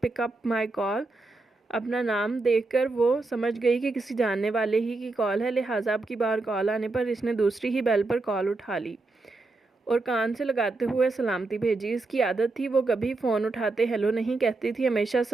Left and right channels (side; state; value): left; quieter; 3.3 dB